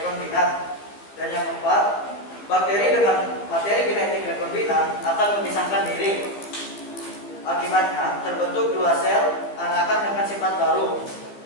Dan yang keempat, bakteri dengan materi genetik rekombinan akan memisahkan diri. Akibatnya terbentuk dua sel anakan dengan sifat baru,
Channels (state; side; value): late; right; 15 ms